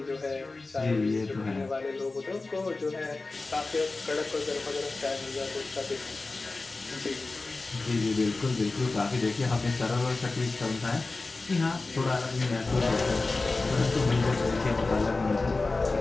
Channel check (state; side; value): quieter; right; 3.5 dB